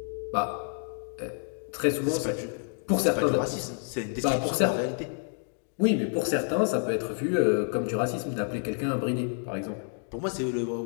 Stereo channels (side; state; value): right; silent; 59 dB below the other